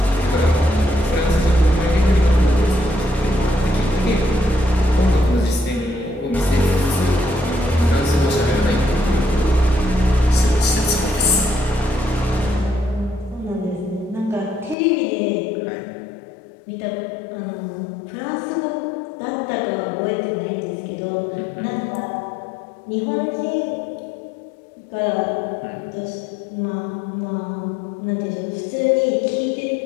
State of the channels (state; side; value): drops out; right; at 14.8 s